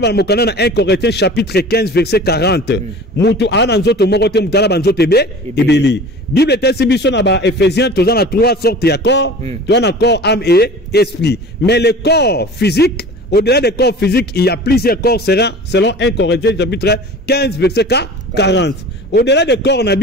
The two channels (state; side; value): normal; both; correlation 0.40